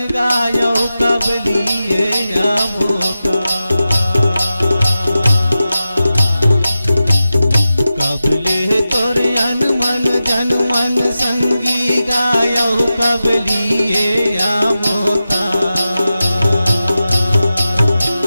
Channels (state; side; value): inverted; both; correlation -0.93